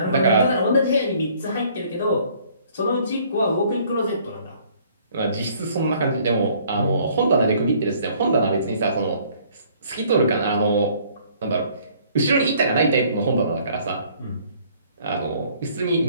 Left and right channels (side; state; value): both; inverted; correlation -0.59